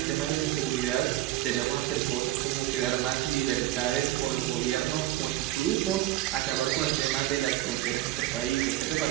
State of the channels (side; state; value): left; quieter; 15.4 dB